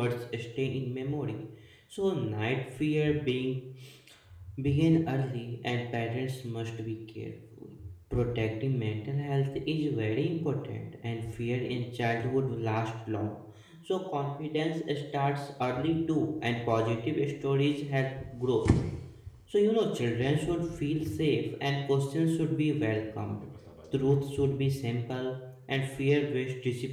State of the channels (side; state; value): both; identical; correlation 1.00